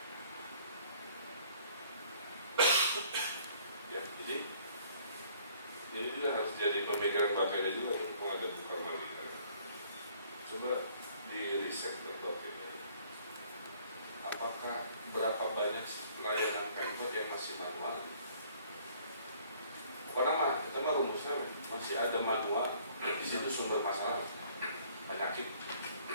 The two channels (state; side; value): inverted; both; correlation -0.58